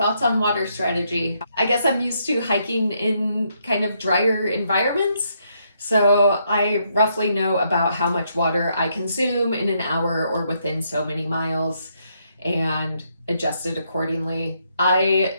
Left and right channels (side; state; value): both; inverted; correlation -0.75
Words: on water strategy? I guess I'm used to hiking in kind of drier environments, so I roughly know about how much water I consume in an hour or within so many miles and adjust it accordingly. I